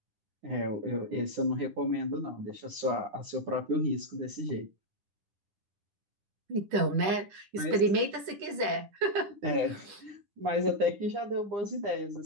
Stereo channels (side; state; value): left; late; 10 ms